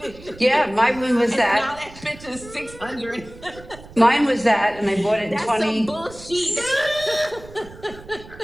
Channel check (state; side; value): noise; right; rumble, 19 dB below the sound